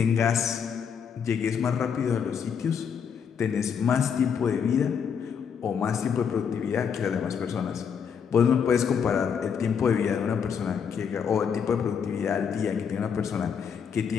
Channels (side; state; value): right; quieter; 7.1 dB